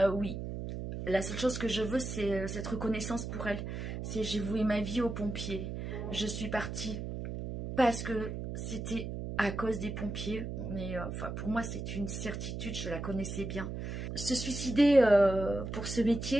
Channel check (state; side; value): noise; right; hum, 5 dB below the sound